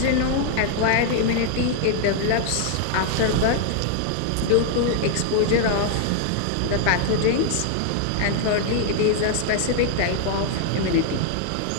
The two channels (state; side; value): different; both; correlation 0.00